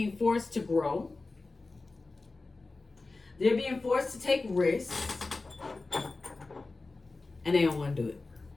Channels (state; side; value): quieter; right; 3.5 dB